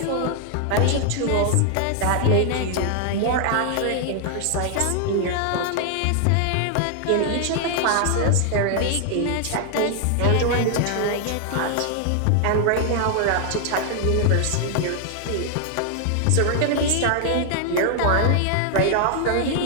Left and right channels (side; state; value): both; different; correlation 0.00